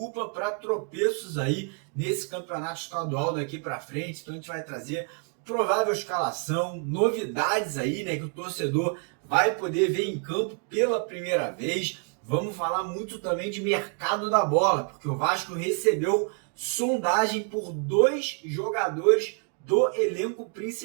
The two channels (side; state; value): left; quieter; 39.9 dB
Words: para tropeços aí nesse campeonato estadual daqui para frente. Então a gente vai trazer provável escalação, novidades aí, né, que o torcedor vai poder ver em campo pela primeira vez. Vamos falar muito também de mercado da bola, porque o Vasco recebeu sondagem por 2 jogadores do elenco